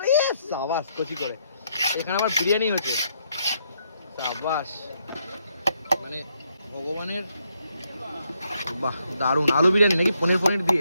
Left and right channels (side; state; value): both; inverted; correlation -0.75